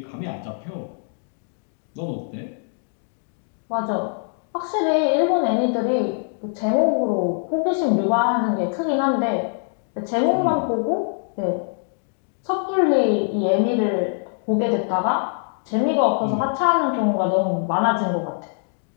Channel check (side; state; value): right; silent; 59 dB below the other